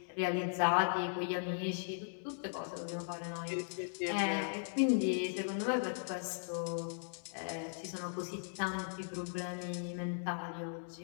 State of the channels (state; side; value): silent; right; digital silence